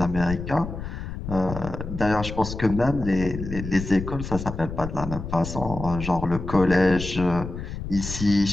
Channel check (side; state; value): left; noise; rumble, 8 dB below the sound